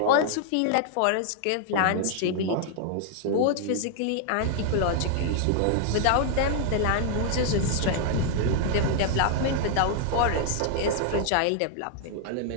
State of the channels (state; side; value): different; both; correlation 0.00